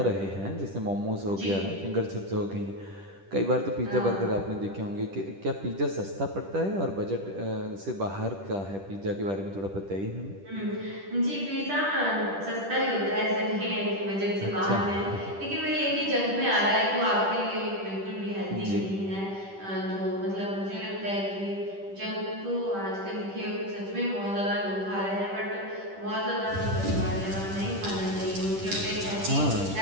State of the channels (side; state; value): left; late; 10 ms